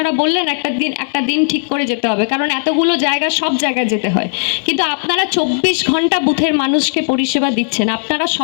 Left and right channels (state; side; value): silent; right; digital silence